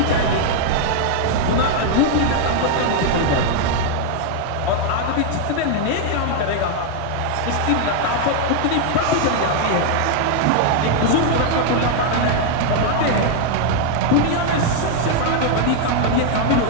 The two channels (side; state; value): both; different; correlation 0.00